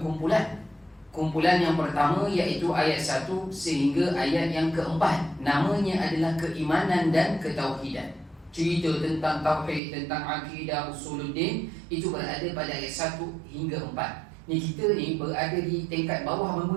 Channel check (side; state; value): left; drops out; at 9.8 s